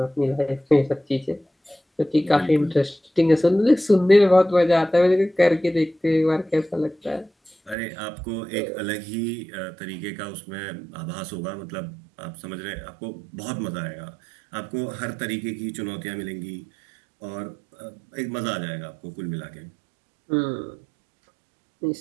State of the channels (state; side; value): drops out; left; at 7.8 s